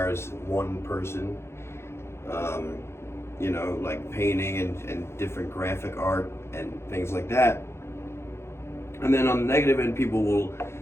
one person, like painting and different graphic art and things like that. And then on the negative end, people will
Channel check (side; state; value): right; late; 0.12 ms